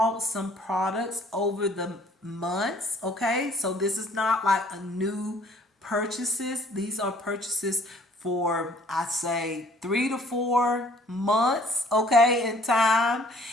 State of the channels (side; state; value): both; normal; correlation 0.57